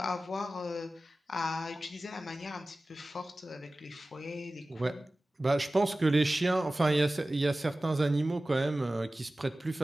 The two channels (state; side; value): normal; both; correlation 0.96